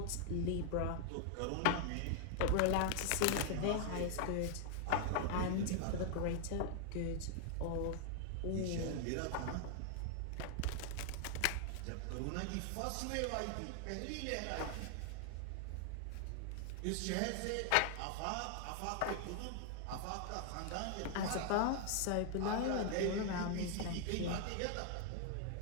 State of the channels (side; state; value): both; different; correlation 0.00